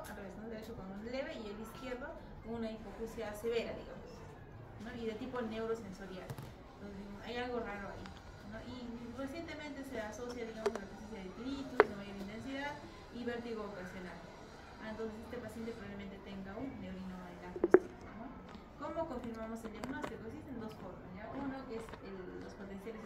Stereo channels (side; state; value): both; identical; correlation 1.00